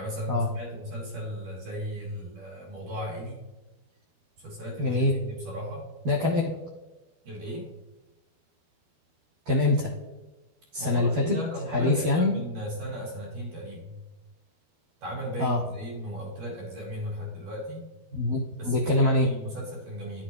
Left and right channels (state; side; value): late; left; 12 ms